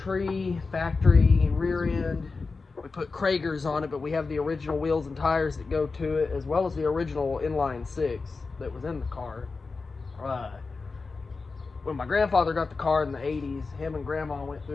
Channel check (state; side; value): quieter; right; 4.2 dB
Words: factory rear end. We put Kragers on it, but we have the original wheels and tires that go to it, as well as the original inline 6 that was in the car. When my grandfather got the car in the 80s, him and grandma went